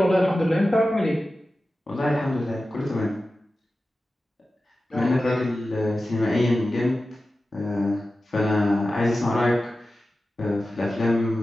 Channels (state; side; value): normal; both; correlation 0.94